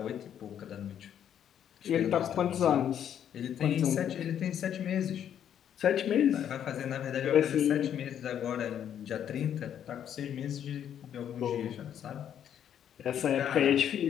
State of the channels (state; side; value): quieter; right; 9.6 dB